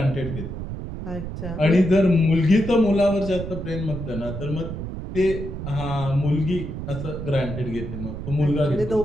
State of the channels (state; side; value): noise; right; rumble, 7 dB below the sound